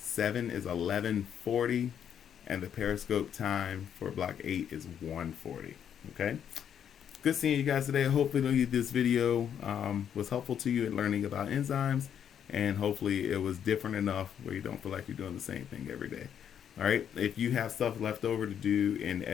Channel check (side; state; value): right; quieter; 8.8 dB